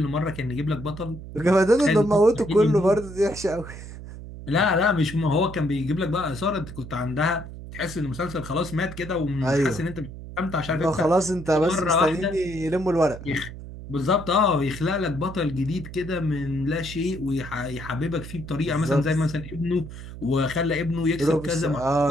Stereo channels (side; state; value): right; noise; hum, 12 dB below the sound